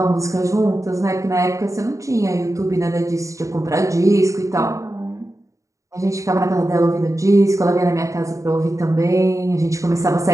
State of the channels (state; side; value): late; left; 0.15 ms